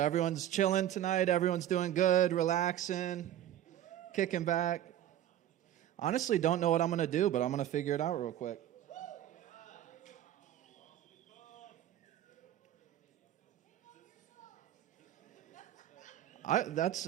everyone's chilling tonight. Everyone's doing good, relaxing, kicking back. Honestly, don't know what I'm going to do, but I'm going to figure it out real quick.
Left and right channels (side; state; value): left; quieter; 12.0 dB